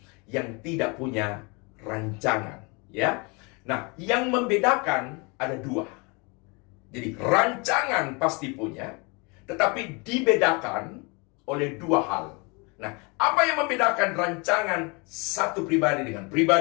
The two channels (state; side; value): quieter; right; 29.9 dB